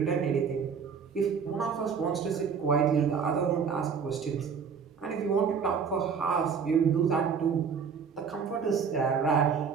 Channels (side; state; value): left; quieter; 6.2 dB